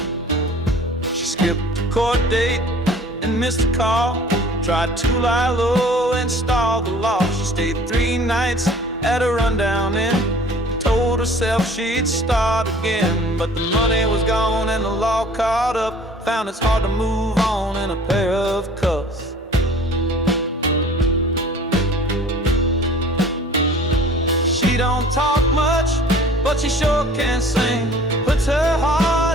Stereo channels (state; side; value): normal; both; correlation 0.49